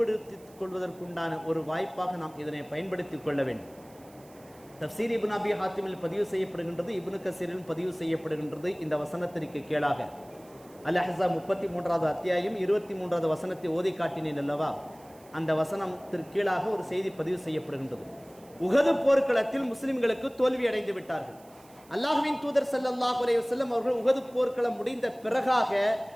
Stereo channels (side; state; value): right; noise; hiss, 26 dB below the sound